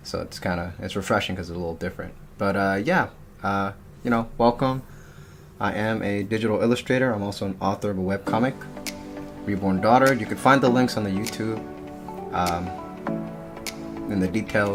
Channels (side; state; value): both; identical; correlation 1.00